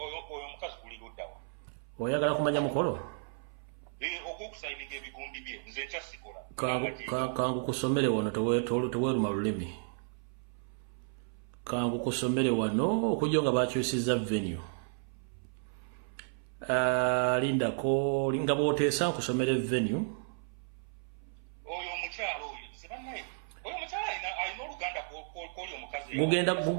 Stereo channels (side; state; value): left; silent; 56 dB below the other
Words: omukazi guli luddawa oyagala kumanya mukolo ogw'okusayininga ebigundi bye nze ekyasikola kangu kusomere wano teweeruma lulimi kangu kusomere wano okujja nga bakyusiza venue lindako nga bw'oteesa nkusomere venue oyo omukyala oyo sebannaye oyo omukyala alina oluganda kw'oli omukazi